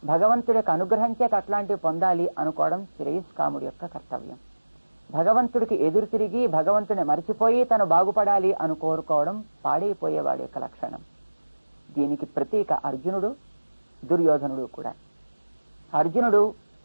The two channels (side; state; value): both; inverted; correlation -1.00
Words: భగవంతుడి యొక్క అనుగ్రహం చేత అట్లాంటివి పొందాలి అనుకోవడం శ్రేయస్కాముడి యొక్క కర్తవ్యం. భగవంతుడికి ఎదురు తిరిగి భగవంతుని మరిచిపోయి తను బాగుపడాలి అని కోరుకోవడం పాడైపోయేవాడి యొక్క లక్షణం. దీనికి ప్రతీక అర్జునుడు, దుర్యోధనుడు కూడా. అర్జునుడు